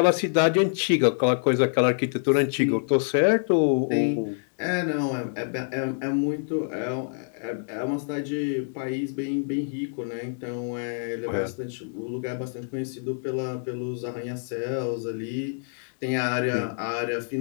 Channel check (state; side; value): silent; right; 61 dB below the other